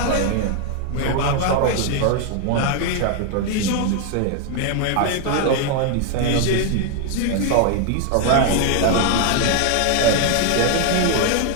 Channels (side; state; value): both; different; correlation 0.00